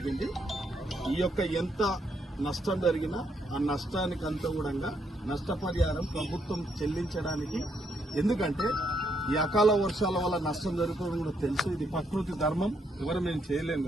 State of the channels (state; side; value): normal; both; correlation 0.75